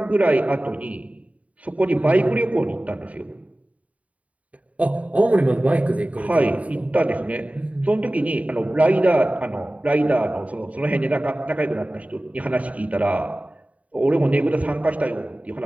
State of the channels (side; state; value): left; late; 0.068 ms